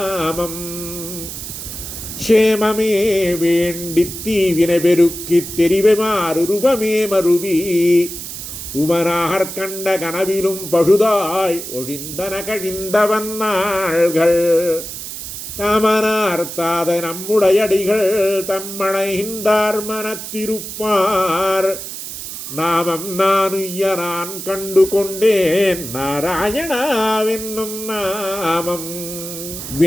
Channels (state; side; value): noise; right; hiss, 9 dB below the sound